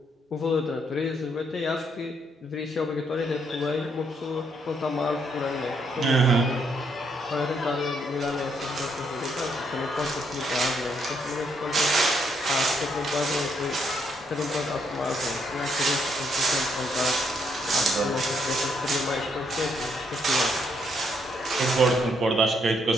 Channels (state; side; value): normal; both; correlation 0.74